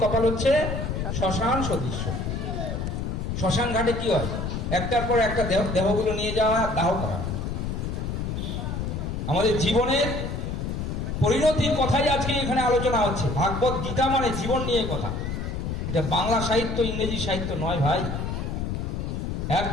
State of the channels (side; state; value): left; noise; rumble, 3 dB below the sound